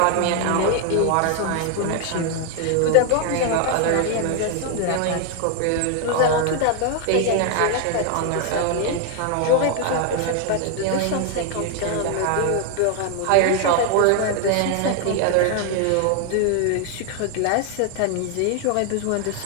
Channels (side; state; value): both; different; correlation 0.00